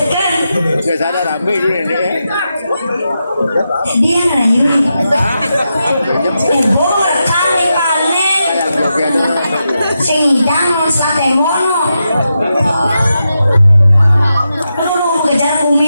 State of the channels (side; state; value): both; inverted; correlation -0.87